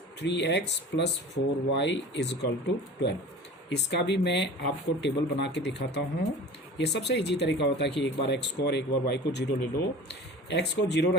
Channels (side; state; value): both; normal; correlation 0.39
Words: 3x + 4y is equal to 12। इसका भी मैं आपको टेबल बना के दिखाता हूँ। ये सबसे इजी तरीका होता है कि एक बार x को और एक बार y को 0 ले लो। x को 0